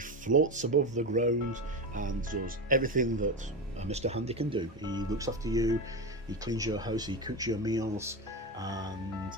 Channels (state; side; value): normal; both; correlation 0.19